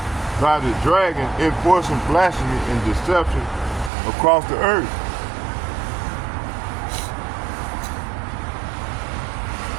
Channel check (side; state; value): left; drops out; at 3.9 s